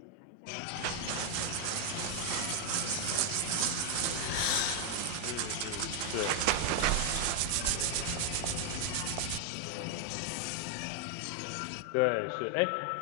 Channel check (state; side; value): different; both; correlation 0.00